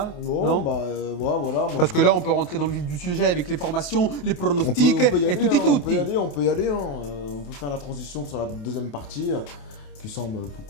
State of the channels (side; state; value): right; late; 28 ms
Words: Non, bah voilà. Parce que là, on peut rentrer dans le vif du sujet avec les formations, les pronostics et tout et tout. On peut y aller. Hein. On peut faire la transition sur la deuxième partie qui semble beaucoup